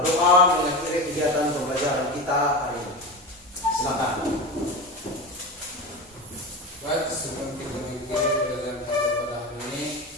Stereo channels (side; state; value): both; normal; correlation 0.24